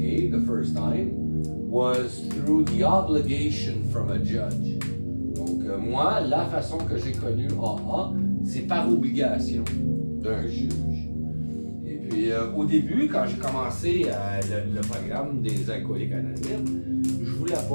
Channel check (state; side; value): inverted; both; correlation -1.00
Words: the first time was through the obligation from a judge. Donc moi, la façon que j'ai connu AA, c'est par obligation d'un juge. Et puis au début, quand j'ai commencé le programme des Alcooliques Anonymes, je voulais